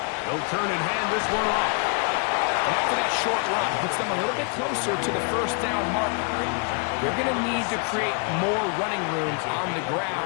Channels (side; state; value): right; quieter; 37.0 dB